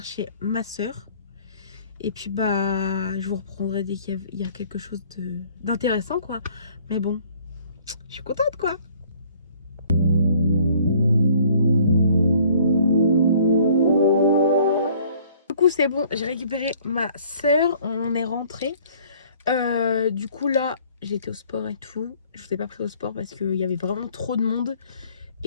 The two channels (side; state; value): both; inverted; correlation -0.57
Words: ma soeur. Et puis bah je vous reprendrai dès qu'il y a quelque chose d'intéressant quoi. Mais bon, je suis contente quoi. Du coup c'est bon, j'ai récupéré ma soeur, on est rentré. Du coup là j'ai été au sport et tout. Je vous ai pas pris au sport parce qu'il y avait vraiment trop de monde.